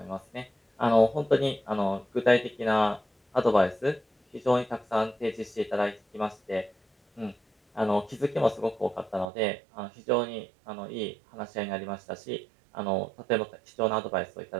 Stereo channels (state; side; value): drops out; left; at 9.3 s